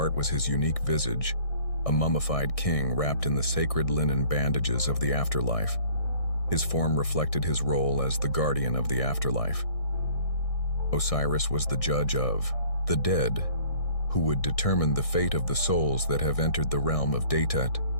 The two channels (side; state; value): right; late; 1.6 ms